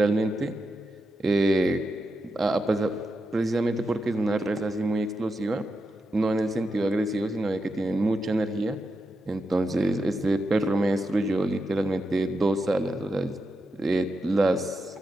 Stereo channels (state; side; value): normal; both; correlation 0.87